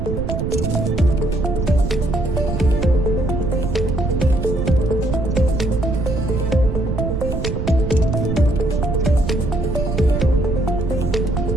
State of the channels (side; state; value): right; noise; rumble, 2 dB below the sound